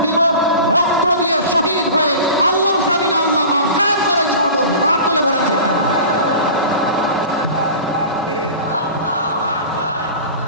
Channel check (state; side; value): inverted; both; correlation -0.36